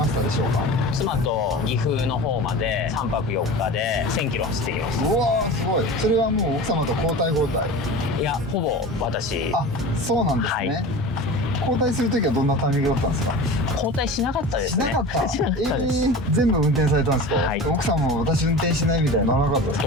したでしょうか？妻と岐阜の方まで3泊4日で1000キロ走ってきます。うわーすごい。それはもう奥様と交代交代？いや、ほぼ私。そうなんですね。交代するときはどんなタイミングだったんですか？交代しなかったですね。しなかったです。全部運転されたんですか？奥さんも私運転しないみたいなのなかったですか？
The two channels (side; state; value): both; normal; correlation 0.33